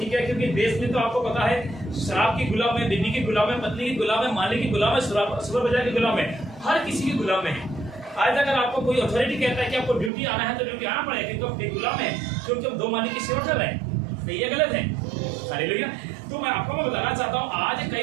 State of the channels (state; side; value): drops out; left; at 10.1 s